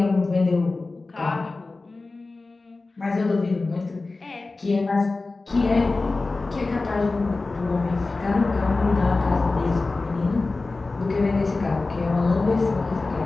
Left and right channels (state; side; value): quieter; right; 3.5 dB